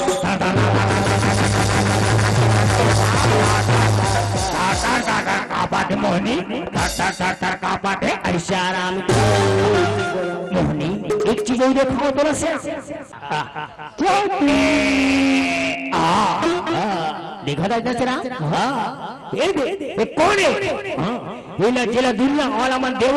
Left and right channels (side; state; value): both; identical; correlation 1.00